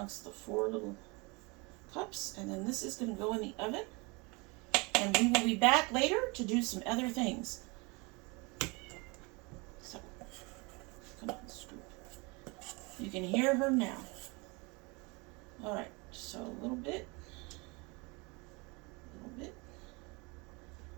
the 4 little cups, and then this is going to go in the oven, and we will be back later to do some other things. So, come on, scoop. You can hear her now. Alright, so a little bit.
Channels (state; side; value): quieter; left; 27.8 dB